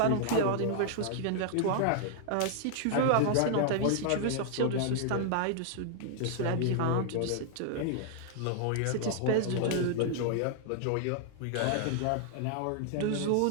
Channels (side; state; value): both; different; correlation 0.00